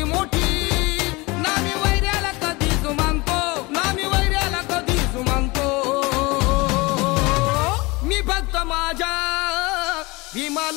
मोठी नामी वैऱ्याला कधीच मानतो नामी वैऱ्याला कधीच मानतो मी फक्त माझ्या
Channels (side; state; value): right; quieter; 24.2 dB